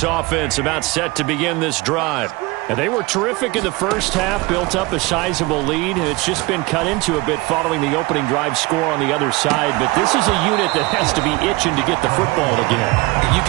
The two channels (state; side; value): quieter; left; 22.3 dB